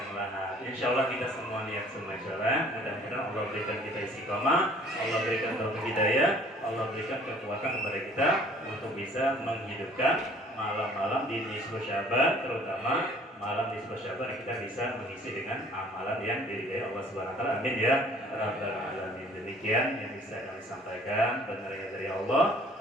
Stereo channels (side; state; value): both; normal; correlation 0.54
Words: lahat. Insya Allah kita semua niat semua jalan. Mudah-mudahan Allah berikan kita istiqomah, Allah berikan taufik hidayah, Allah berikan kekuatan kepada kita untuk bisa menghidupkan malam-malam di nisfu Syaban, terutama malam nisfu Syaban yang kita bisa mengisi dengan amalan yang diridhai Allah Subhanahu Wa Taala. Amin ya rabbal alamin. Demikian yang bisa kami sampaikan, benarnya dari Allah.